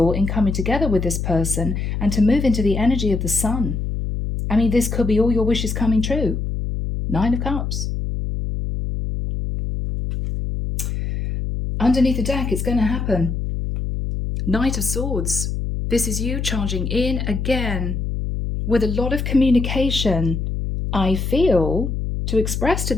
in coming together with this person and to move into the energy of the Sun. I mean, this could be all your wishes coming true. 9 of Cups. Underneath the deck, it's going to happen. Knight of Swords. This is you charging in again with a lot of communication, I feel, to express to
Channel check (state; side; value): noise; left; hum, 3 dB below the sound